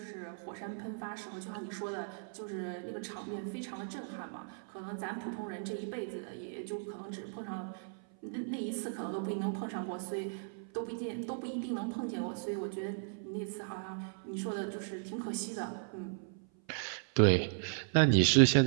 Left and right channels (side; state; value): left; silent; 54 dB below the other